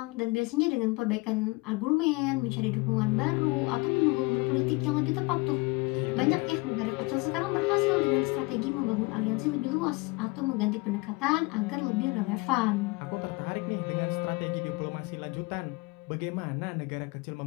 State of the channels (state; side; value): quieter; right; 25.8 dB